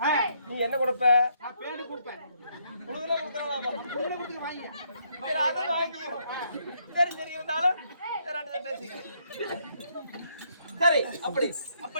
நீ என்ன கொடுப்ப நான் பேடு கொடுப்பேன் கொடுக்கல கொடுக்கறாமா புள்ள கொடுத்து வாங்கி சரி அதை வாங்கிக்கோ சரி சரி இருந்தாலும் ரெண்டு பேசிக்க சரி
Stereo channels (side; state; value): both; inverted; correlation -0.72